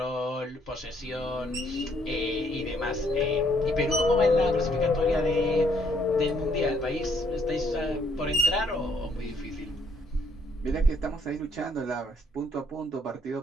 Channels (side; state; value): both; normal; correlation 0.69